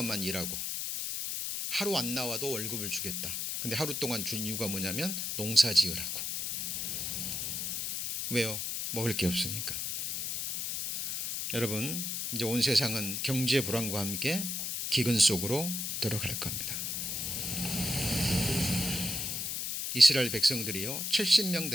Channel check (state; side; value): noise; left; hiss, 2 dB below the sound